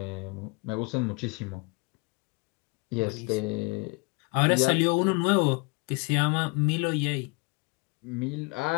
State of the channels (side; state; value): right; quieter; 30.1 dB